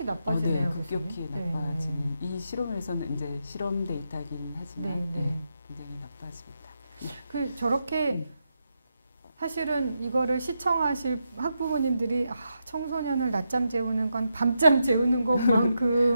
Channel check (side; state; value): both; inverted; correlation -0.84